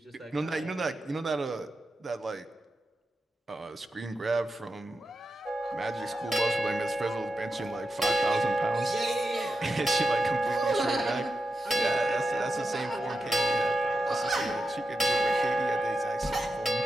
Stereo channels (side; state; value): both; normal; correlation 0.89